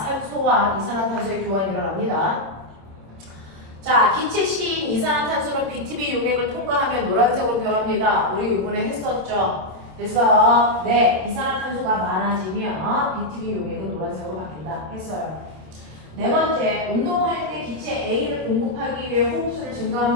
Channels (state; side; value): late; left; 26 ms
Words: 이산화탄소의 교환이 일어납니다. 자, 기체 C인 이산화탄소는 BTB 용액을 통과하며 노란색으로 변합니다. 우리 이번에 했었죠. 그래서 네, 이산화탄소가 많아지면 BTB 용액은 노란색으로 바뀐다 했어요. 네 번째, 운동할 때 기체 A를 공급하기 위해 호흡수를